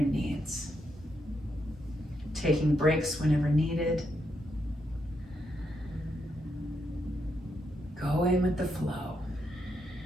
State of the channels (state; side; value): normal; both; correlation 0.80